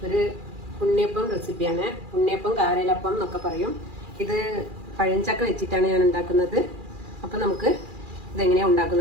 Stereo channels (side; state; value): left; late; 2.4 ms